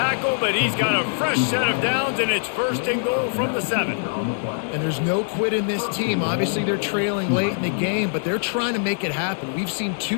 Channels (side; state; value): right; silent; digital silence